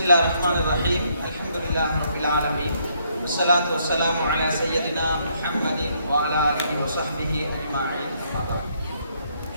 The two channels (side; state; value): both; inverted; correlation -0.71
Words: ரஹ்மானிர் ரஹீம். அல்ஹம்துலில்லாஹி ரப்பில் ஆலமீன். வஸ்ஸலாத்து வஸ்ஸலாமு அலா சய்யிதினா முஹம்மதின் வ அலா ஆலிஹி வ ஸஹ்பிஹி அஜ்மஈன்.